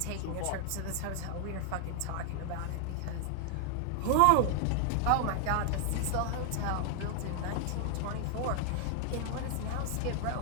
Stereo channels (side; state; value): both; different; correlation 0.00